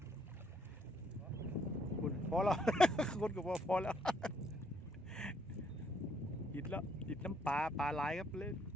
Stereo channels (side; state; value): both; normal; correlation 0.69